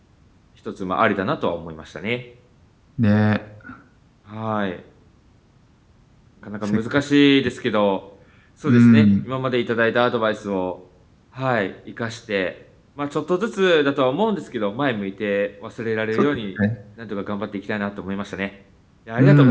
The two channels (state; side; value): identical; both; correlation 1.00